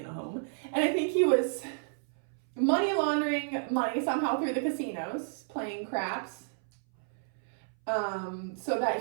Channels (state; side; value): silent; left; 57 dB below the other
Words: a home. And I think he was money laundering money somehow through the casinos, playing craps, so